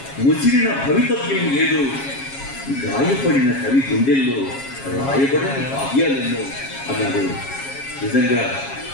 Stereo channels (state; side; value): late; right; 7.3 ms